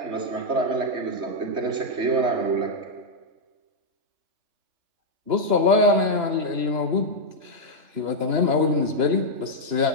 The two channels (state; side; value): late; left; 2.9 ms